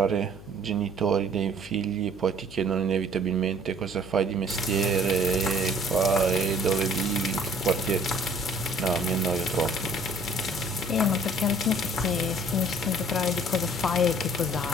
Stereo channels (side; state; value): left; noise; hum, 18 dB below the sound